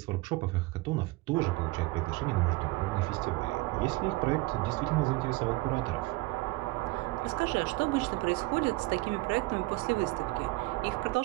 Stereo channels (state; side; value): quieter; left; 22.0 dB